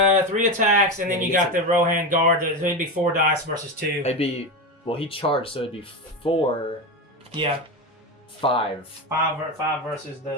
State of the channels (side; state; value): both; normal; correlation 0.18